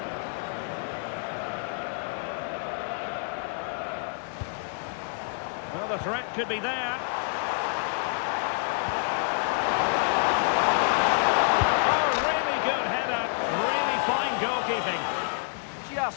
Well, the threat could be there. Oh, really good header. Really fine goalkeeping.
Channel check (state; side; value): silent; right; 59 dB below the other